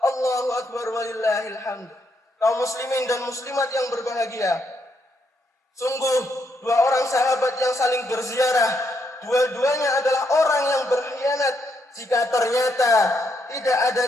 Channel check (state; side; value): normal; both; correlation 0.77